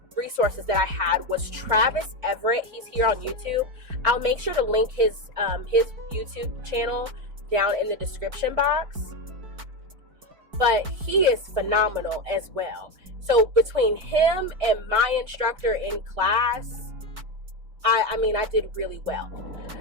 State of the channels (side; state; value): left; late; 4.7 ms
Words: resources that I had was Travis Everette. He's here on YouTube. I'll make sure to link his YouTube channel down in the description box. But he is phenomenal as well. So between him and my instructor in class, I did really well.